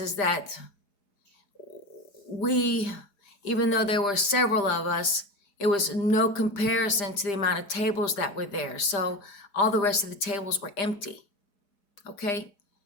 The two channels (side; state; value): right; late; 5.0 ms